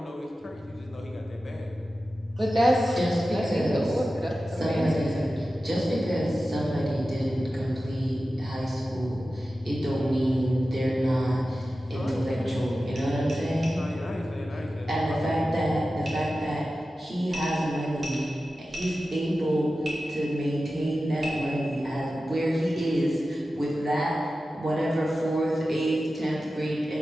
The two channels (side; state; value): both; normal; correlation 0.94